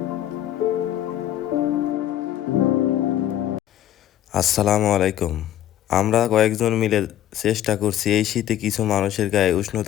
আসসালামু আলাইকুম। আমরা কয়েকজন মিলে চেষ্টা করছি এই শীতে কিছু মানুষের গায়ে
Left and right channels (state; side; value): quieter; right; 12.1 dB